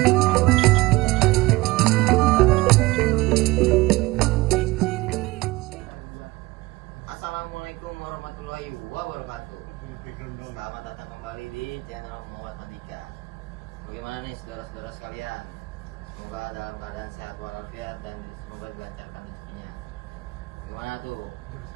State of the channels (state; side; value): quieter; left; 21.0 dB